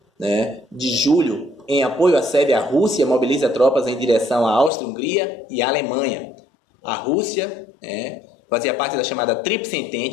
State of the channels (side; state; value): right; drops out; at 4.7 s